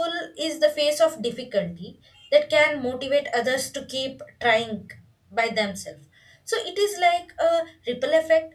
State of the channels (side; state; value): both; identical; correlation 1.00